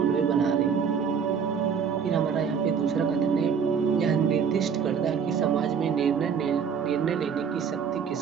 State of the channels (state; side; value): quieter; left; 6.7 dB